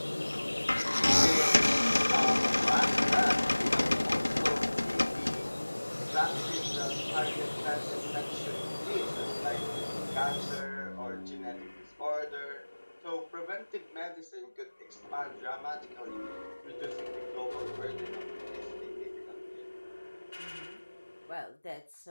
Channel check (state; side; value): inverted; both; correlation -1.00